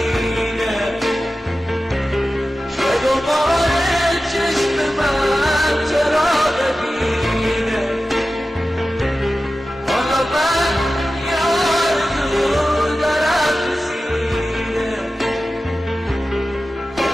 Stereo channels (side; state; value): both; normal; correlation 0.94